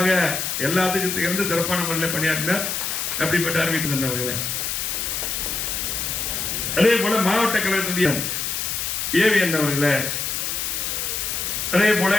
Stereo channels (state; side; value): noise; left; hiss, 2 dB below the sound